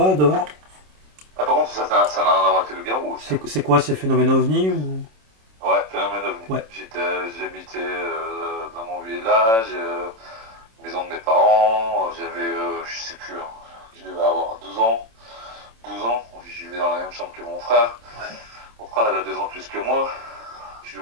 dehors? Ah, par contre, ça n'a rien à voir avec le loup-garou aussi. C'est quoi ces phénomènes ovnis ou... Ouais, phénomène ovni. Ouais. J'habitais dans mon village, maison de mes parents. J'avais, je sais plus, hein, je devais avoir 12 ans. 12 ans, je vivais dans la même chambre que mon frère. Mon frère, il a 2 ans plus que moi.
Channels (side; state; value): left; late; 27 ms